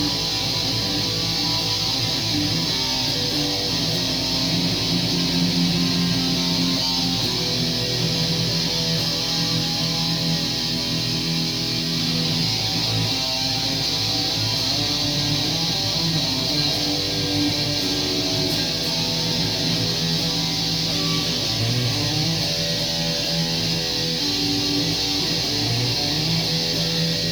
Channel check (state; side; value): noise; right; hiss, 17 dB below the sound